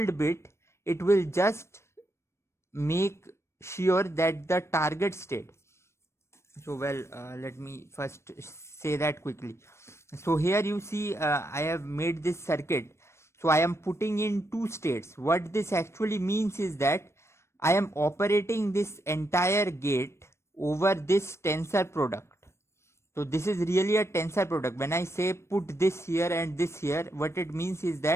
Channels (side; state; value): right; late; 0.13 ms